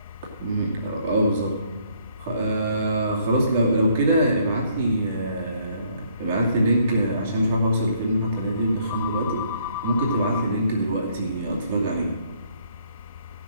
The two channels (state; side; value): inverted; both; correlation -0.66